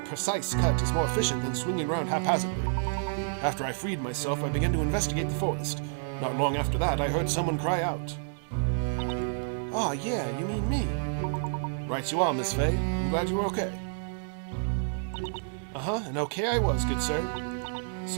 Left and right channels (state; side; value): silent; left; digital silence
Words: more efficient than swinging around haphazardly. After I freed myself, I began to investigate the forest. Not long after that, I heard someone cry out. Ah, yeah, you mean me. Right you are, Miss Fay. I'm glad you were okay. Uh-huh, and okay I was, good sir.